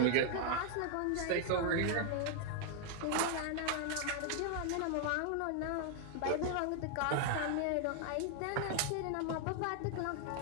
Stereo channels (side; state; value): both; different; correlation 0.00